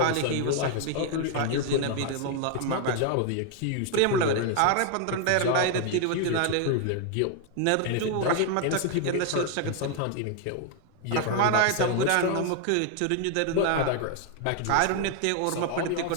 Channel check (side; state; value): both; different; correlation 0.00